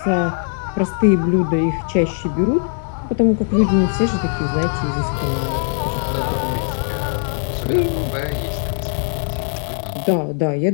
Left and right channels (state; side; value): silent; right; 60 dB below the other